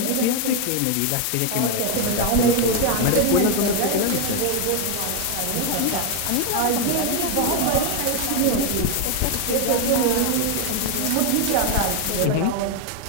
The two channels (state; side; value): different; both; correlation 0.01